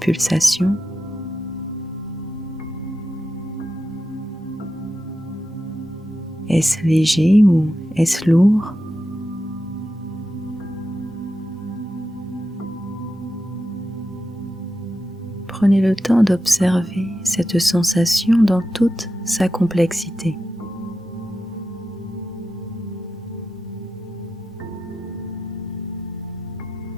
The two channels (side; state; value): both; normal; correlation 0.90